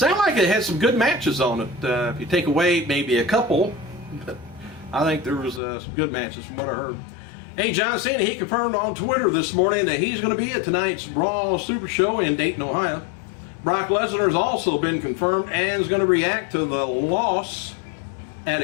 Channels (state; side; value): drops out; right; at 5.6 s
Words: like it had some good matches on it. If you take away maybe a couple, but I think there was some good matches from what I heard. Hey, John Cena, he confirmed on Twitter this morning that he's going to be at tonight's Raw Super Show in Dayton, Ohio. Brock Lesnar has also been confirmed and is going to react to the loss at